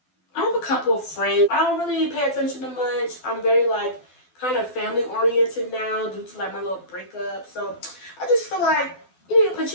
I have a couple of friends. I don't really pay attention to much. I'm very like kind of family oriented now due to like my little breakup. So I just feel like you need to put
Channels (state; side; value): late; right; 12 ms